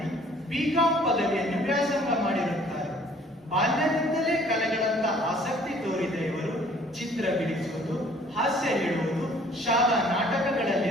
BCom ಪದವಿಯನ್ನು ವ್ಯಾಸಂಗ ಮಾಡಿರುತ್ತಾರೆ. ಬಾಲ್ಯದಿಂದಲೇ ಕಲೆಗಳತ್ತ ಆಸಕ್ತಿ ತೋರಿದ ಇವರು ಚಿತ್ರ ಬಿಡಿಸುವುದು, ಹಾಸ್ಯ ಹೇಳುವುದು, ಶಾಲಾ ನಾಟಕಗಳಲ್ಲಿ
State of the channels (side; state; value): both; normal; correlation 0.57